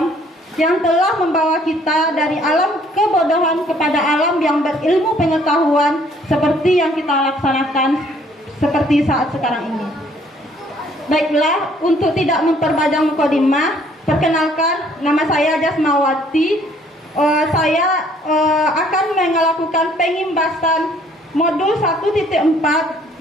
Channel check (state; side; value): normal; both; correlation 0.61